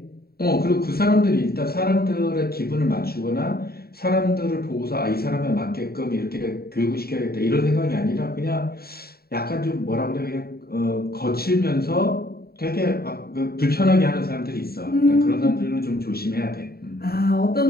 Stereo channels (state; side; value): late; right; 0.45 ms